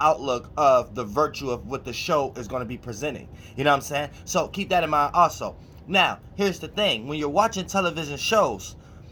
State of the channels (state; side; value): identical; both; correlation 1.00